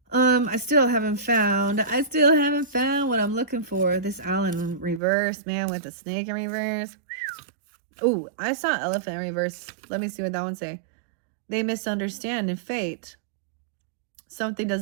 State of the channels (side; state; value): left; drops out; at 5.0 s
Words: I still haven't found what I'm looking for. This owl in reverse, man, with the snake in reverse. Ooh, I saw elephant in reverse. Let me see what that one say. They misunderstand in fate. Someone